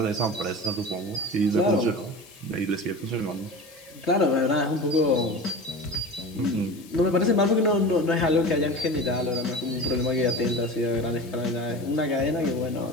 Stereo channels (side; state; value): left; noise; hiss, 22 dB below the sound